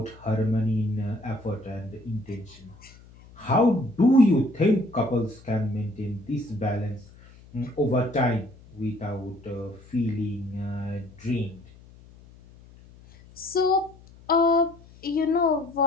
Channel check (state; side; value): noise; left; hum, 23 dB below the sound